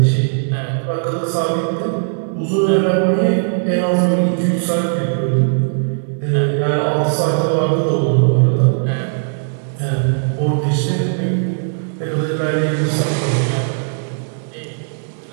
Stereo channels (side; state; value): left; silent; 60 dB below the other